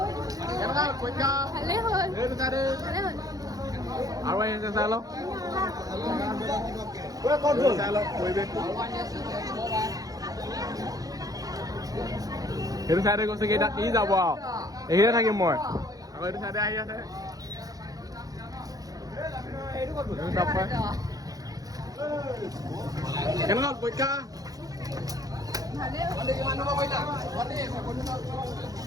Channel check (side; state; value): left; late; 0.18 ms